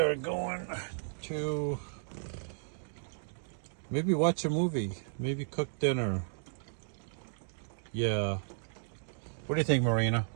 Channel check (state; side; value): silent; left; digital silence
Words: going to maybe watch a movie, maybe cook dinner. Yeah. What do you think, Marina?